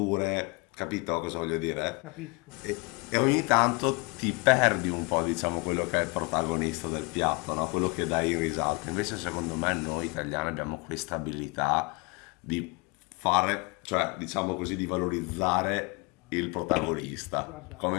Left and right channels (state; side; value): quieter; right; 30.3 dB